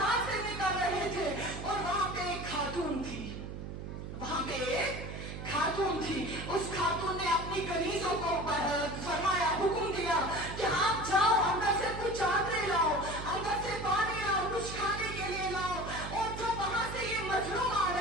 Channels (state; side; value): noise; right; hum, 8 dB below the sound